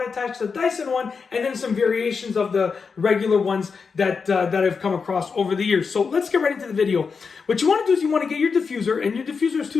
to attach the Dyson one, and then some variations of the regular ones that I've come across over the years. So let's get right into the video. What you want to do is you want to get your diffuser, and your diffuser has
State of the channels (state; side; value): quieter; right; 5.3 dB